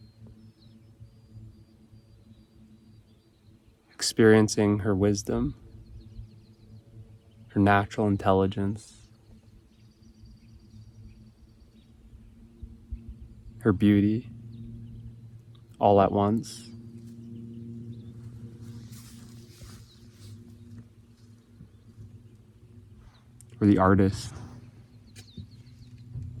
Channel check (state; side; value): identical; both; correlation 1.00